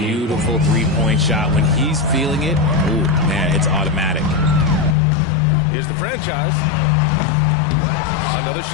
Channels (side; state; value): right; drops out; at 5.0 s